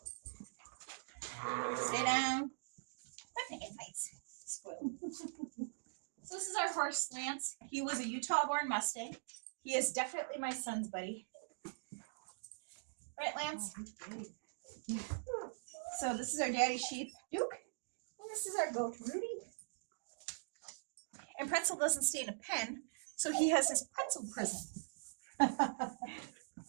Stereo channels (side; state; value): left; silent; digital silence